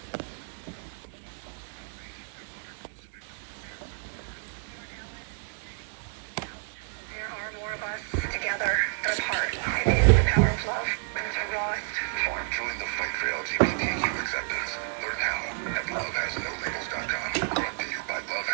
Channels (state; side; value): silent; left; 58 dB below the other